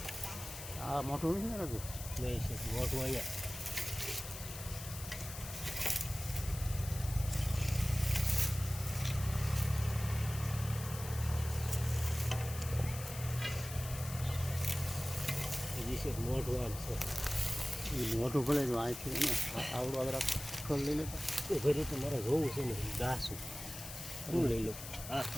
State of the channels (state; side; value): noise; left; hiss, 10 dB below the sound